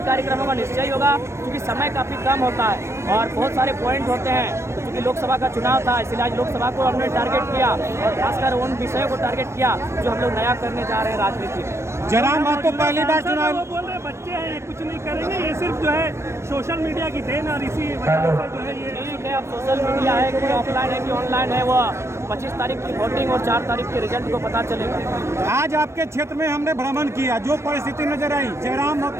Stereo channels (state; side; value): late; left; 0.13 ms